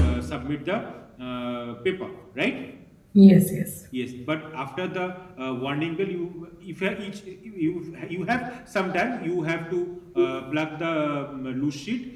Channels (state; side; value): identical; both; correlation 1.00